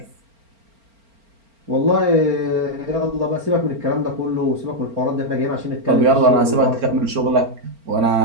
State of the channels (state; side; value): late; left; 4.4 ms